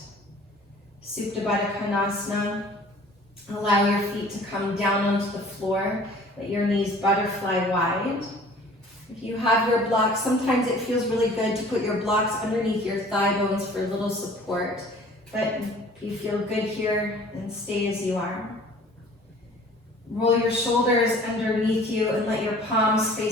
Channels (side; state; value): both; normal; correlation 0.49